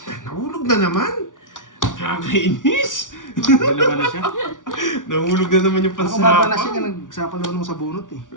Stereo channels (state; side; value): late; right; 0.88 ms